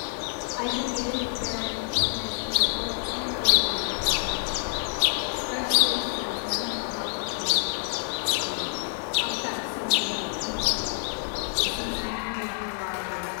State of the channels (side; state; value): right; silent; 60 dB below the other